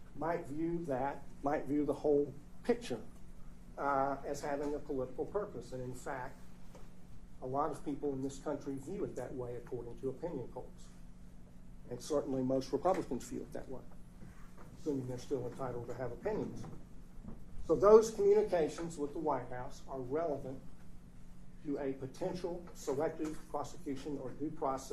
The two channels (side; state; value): both; identical; correlation 1.00